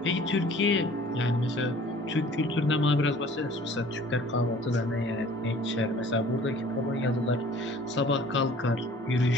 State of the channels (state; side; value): normal; both; correlation 0.50